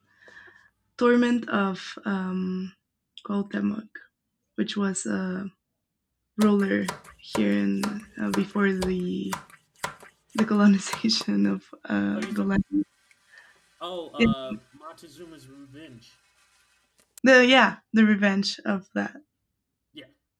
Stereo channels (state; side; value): identical; both; correlation 1.00